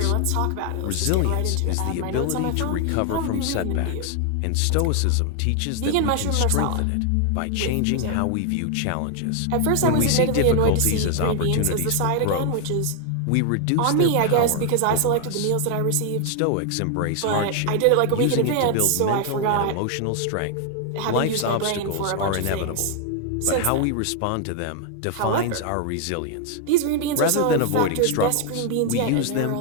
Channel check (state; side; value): different; both; correlation 0.00